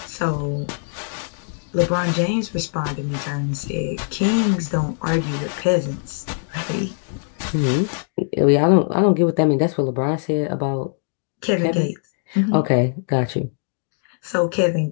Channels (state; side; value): silent; right; digital silence